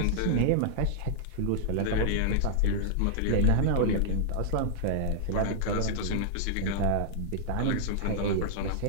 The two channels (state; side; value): different; both; correlation -0.01